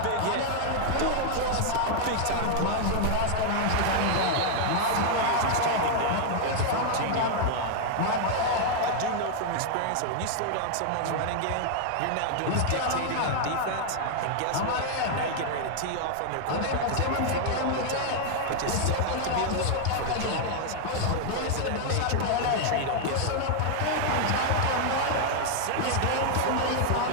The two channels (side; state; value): both; different; correlation 0.00